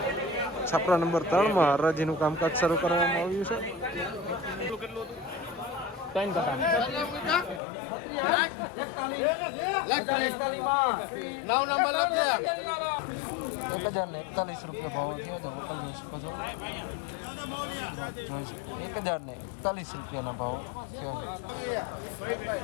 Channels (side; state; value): right; drops out; at 7.6 s